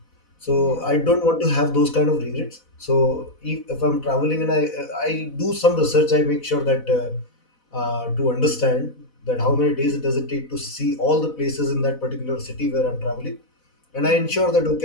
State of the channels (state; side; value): late; right; 4.1 ms